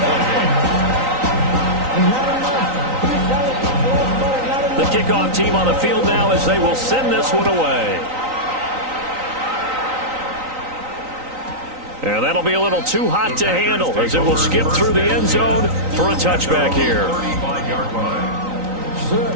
The kickoff team on the field now as they will send this one away. And that'll be a little too hot to handle as it will skip through the end zone for a touchback here.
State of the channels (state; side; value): late; left; 3.9 ms